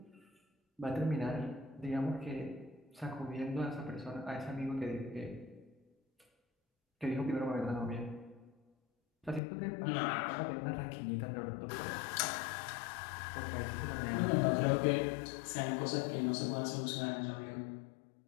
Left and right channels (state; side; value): drops out; right; at 9.4 s